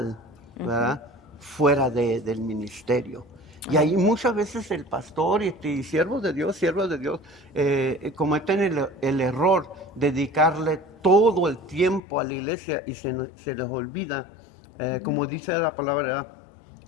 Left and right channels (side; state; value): right; drops out; at 12.0 s